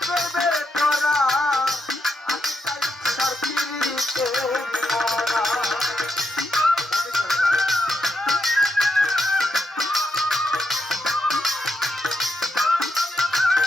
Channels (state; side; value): normal; both; correlation 0.82